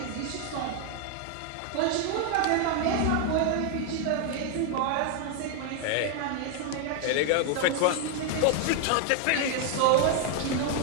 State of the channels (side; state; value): both; different; correlation 0.01